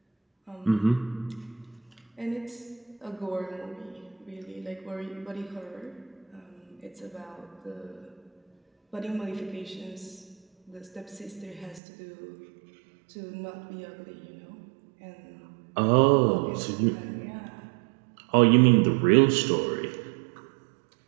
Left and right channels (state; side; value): drops out; left; at 11.8 s